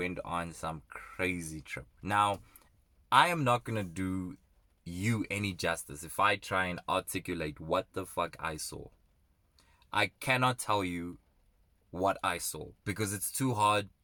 on some crazy trip. Now, I am not going to do you any justice if I try and articulate what the fuck I saw. I cannot tell you what I saw because it's too hard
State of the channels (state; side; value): identical; both; correlation 1.00